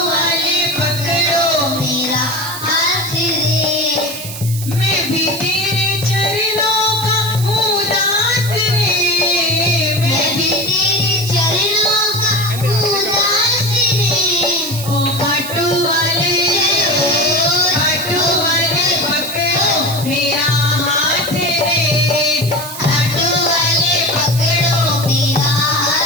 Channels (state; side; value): noise; right; hiss, 10 dB below the sound